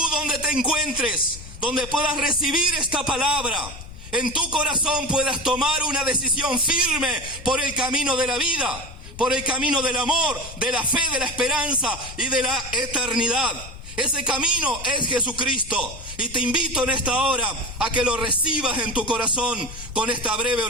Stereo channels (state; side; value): noise; left; rumble, 14 dB below the sound